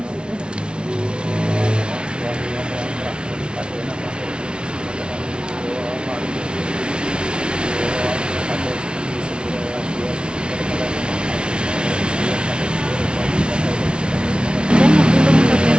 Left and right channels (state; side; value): late; left; 0.056 ms